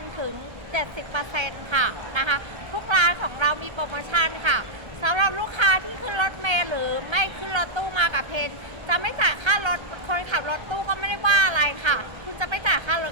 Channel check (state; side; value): late; left; 1.3 ms